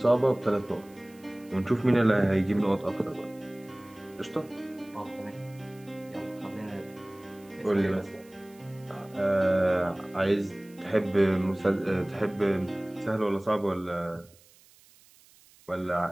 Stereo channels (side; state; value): right; noise; hiss, 27 dB below the sound